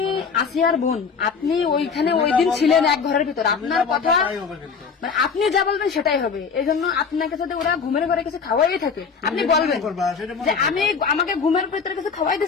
আসিয়ার বোন, আপনি ওইখানে ওই দিন ছিলেন এক ঘরের ভিতর, আপনার কথা মানে আপনি যা বলবেন সেটাই হবে। এই জন্য আপনাকে যদি ওরা ঘুমের ঘরে কিছু খাওয়াই থাকে আপনি বলবেন যে আমি আমাকে ঘুমের ভিতরে কিছু খাওয়াই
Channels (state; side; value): quieter; right; 5.7 dB